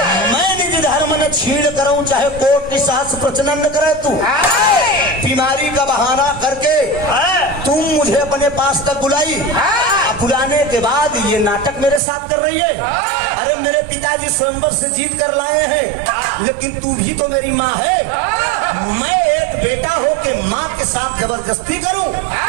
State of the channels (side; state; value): left; drops out; at 12.0 s